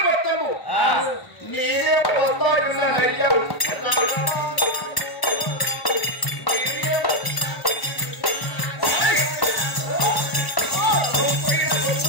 పట్టము నేనే వస్తాడున్న నయ్యా.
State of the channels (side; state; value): right; late; 1.0 ms